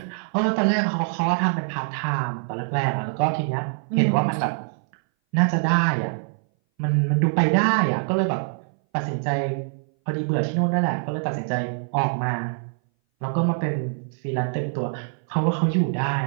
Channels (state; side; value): silent; left; 60 dB below the other